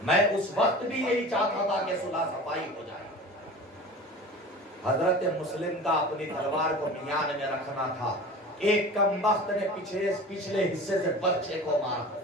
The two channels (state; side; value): normal; both; correlation 0.37